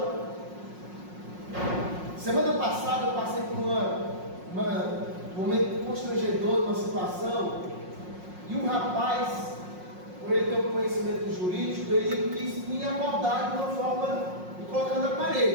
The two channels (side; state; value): left; late; 5.5 ms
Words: Semana passada eu passei por um momento constrangedor, uma situação, e um rapaz, por ele ter um conhecimento jurídico, ele quis me abordar de uma forma me colocar na